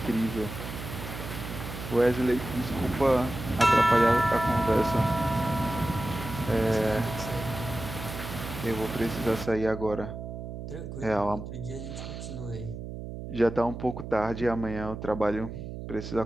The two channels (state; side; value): noise; right; hum, 9 dB below the sound